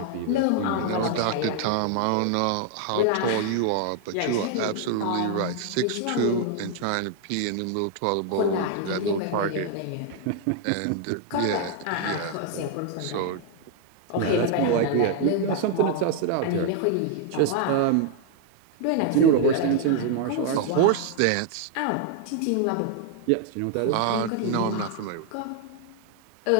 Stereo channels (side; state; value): both; different; correlation 0.00